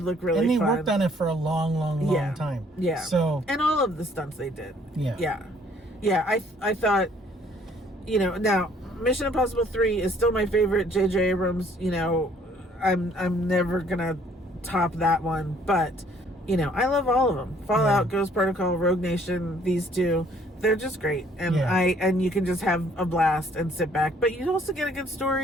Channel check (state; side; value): normal; both; correlation 0.61